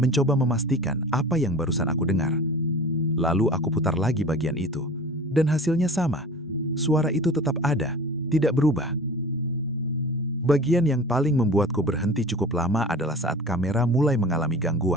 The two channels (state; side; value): normal; both; correlation 0.39